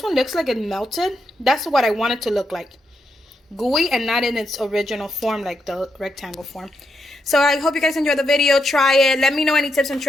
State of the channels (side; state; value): both; normal; correlation 0.82